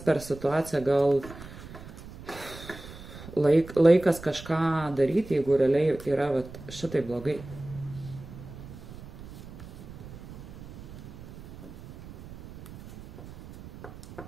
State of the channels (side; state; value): right; noise; rumble, 15 dB below the sound